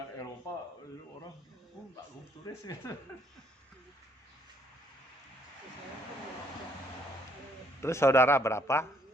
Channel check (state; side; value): normal; both; correlation 0.67